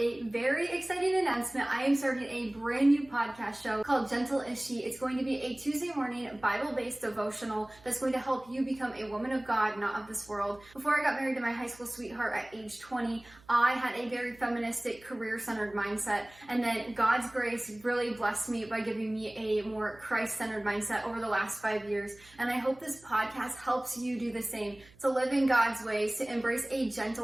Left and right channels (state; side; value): noise; right; hum, 26 dB below the sound